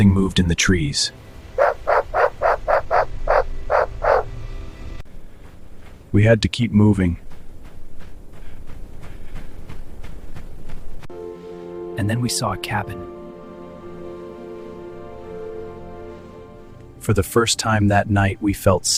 moved in the trees. We had to keep moving. And then we saw a cabin. For the first time that night, we felt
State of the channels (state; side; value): identical; both; correlation 1.00